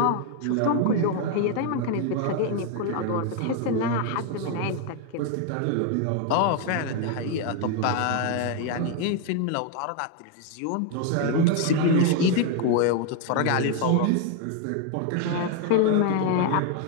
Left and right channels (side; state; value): both; different; correlation 0.01